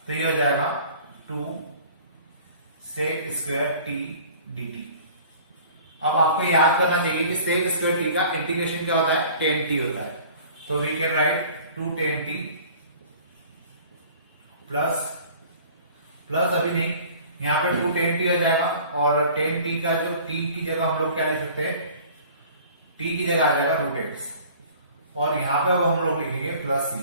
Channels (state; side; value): inverted; both; correlation -0.47